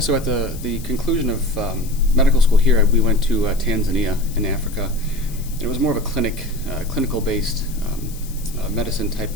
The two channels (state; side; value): noise; left; hiss, 18 dB below the sound